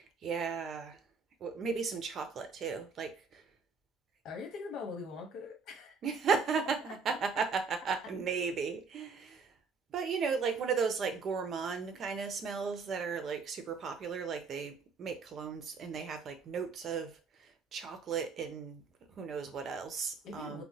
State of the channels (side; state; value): left; quieter; 5.0 dB